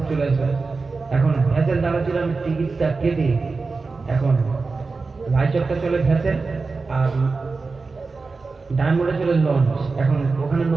চলে আসবে। এখন ভ্যাসেল দাঁড়াচ্ছিল, আমি টিকিটটা কেটে এখন রায়চকটা চলে ভ্যাসেল, আর ডায়মন্ডে চলে লঞ্চ। এখন ওখানে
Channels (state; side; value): quieter; left; 4.1 dB